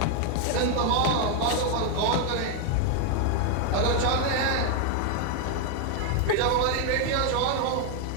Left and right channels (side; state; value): both; different; correlation 0.00